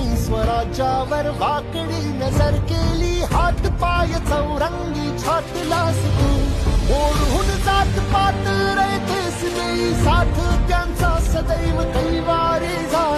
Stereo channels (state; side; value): identical; both; correlation 1.00